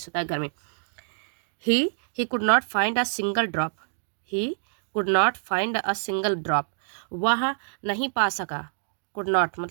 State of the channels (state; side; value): silent; left; digital silence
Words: होता है गर्मी। He could not find a single drop. He could not find a single drop, वह नहीं पा सका। कुड नॉट